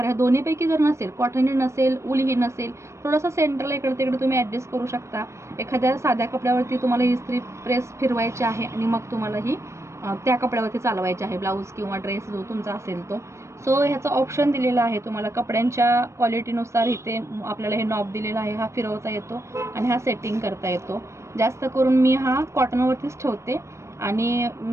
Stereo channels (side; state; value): left; late; 0.13 ms